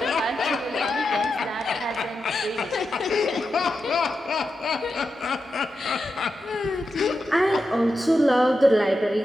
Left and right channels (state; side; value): normal; both; correlation 0.89